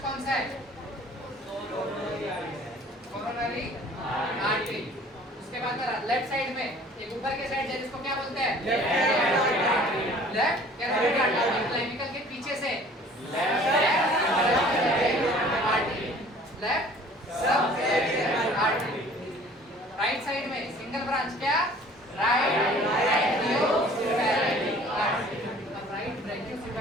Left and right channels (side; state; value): both; normal; correlation 0.51